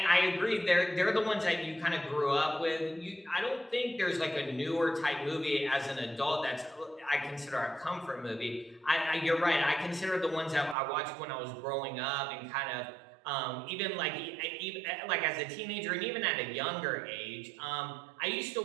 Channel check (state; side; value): drops out; left; at 10.8 s